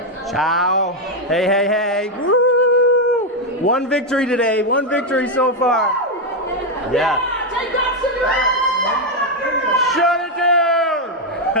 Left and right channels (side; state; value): both; normal; correlation 0.03